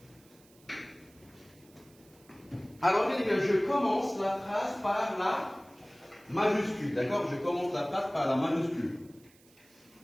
Alors eh bien, je commence la phrase par la majuscule. D'accord? Je commence la phrase par la majuscule.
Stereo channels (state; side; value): noise; right; hiss, 28 dB below the sound